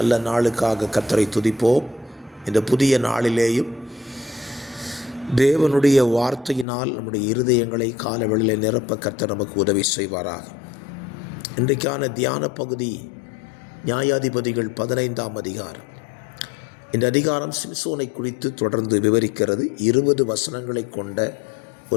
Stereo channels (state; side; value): drops out; right; at 6.7 s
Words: நாளுக்காக கர்த்தரை துதிப்போம். இந்த புதிய நாளிலேயும் தேவனுடைய வார்த்தையினால் நம்முடைய இருதயங்களை கால வேளையில் நிரப்ப கர்த்தர் நமக்கு உதவி செய்வாராக. இன்றைக்கான தியான பகுதி நியாயாதிபதிகள் 15ஆம் அதிகாரம். இந்த அதிகாரம் சிம்சோனை குறித்து தொடர்ந்து விவரிக்கிறது. 20 வசனங்களை கொண்ட